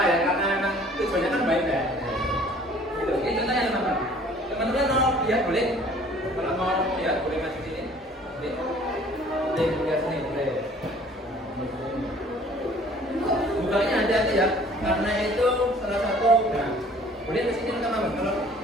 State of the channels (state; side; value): normal; both; correlation 0.53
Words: ya, karena memang tujuannya kan baik ya. Gitu. Ini contohnya teman-teman. Teman-teman mau lihat boleh? Kalau mau lihat boleh masuk sini. Boleh lihat sini boleh. Bukanya hati-hati ya, karena itu salah satu. Nah, boleh ke sini teman-teman. Kalau